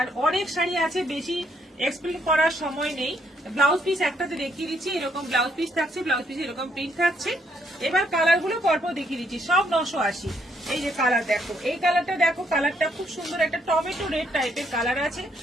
অনেক শাড়ি আছে, বেশি এক্সপ্লেন করার সময় নেই। ব্লাউজ পিস একটাতে দেখিয়ে দিচ্ছি, এরকম ব্লাউজ পিস থাকছে, ব্লাউজ পিস এরকম প্রিন্ট থাকছে। এবার কালার গুলো পরপর দেখিয়ে দিচ্ছি, সব 980। এই যে কালার দেখো, এই কালারটা দেখো, কালারটা খুব সুন্দর, একটা টমেটো রেড টাইপের কালার আছে।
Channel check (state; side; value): normal; both; correlation 0.72